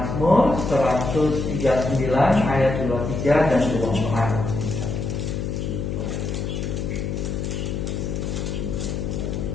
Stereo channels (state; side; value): noise; left; hum, 3 dB below the sound